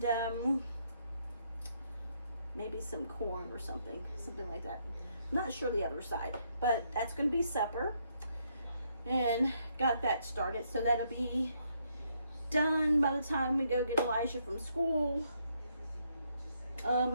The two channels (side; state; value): both; inverted; correlation -0.74